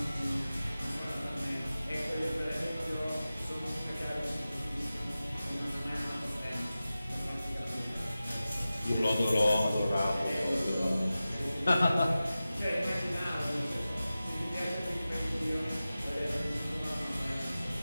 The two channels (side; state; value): both; inverted; correlation -0.95